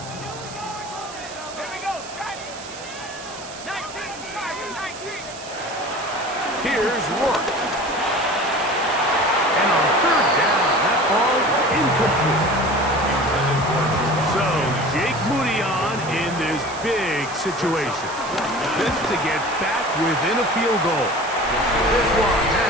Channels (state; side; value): noise; right; hiss, 15 dB below the sound